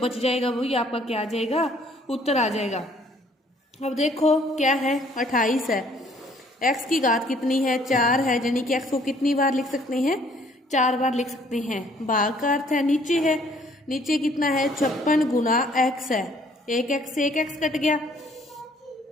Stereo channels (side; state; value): both; normal; correlation 0.61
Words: जाएगा वही आपका क्या आ जाएगा, उत्तर आ जाएगा। अब देखो क्या है, 28 है, x की घात कितनी है, 4 है, यानी कि x को कितनी बार लिख सकते हैं, 4 बार लिख सकते हैं। भाग का अर्थ है नीचे है, नीचे कितना है, 56 गुना x है, एक x से एक x कट गया।